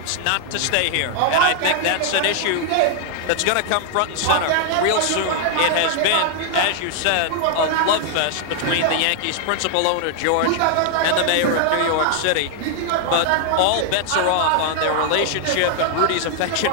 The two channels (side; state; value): both; different; correlation 0.00